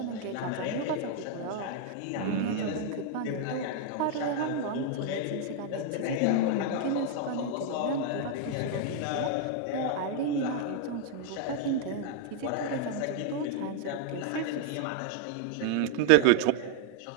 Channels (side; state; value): both; different; correlation 0.00